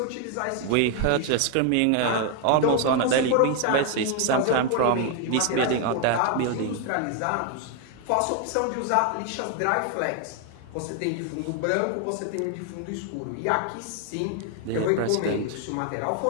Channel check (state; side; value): different; both; correlation 0.01